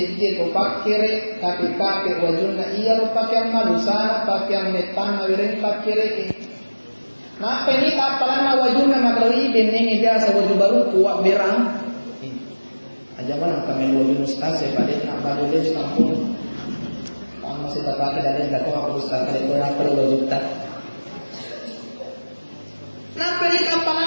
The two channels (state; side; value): inverted; both; correlation -1.00